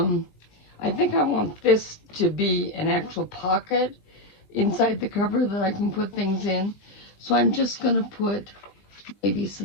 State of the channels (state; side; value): late; right; 20 ms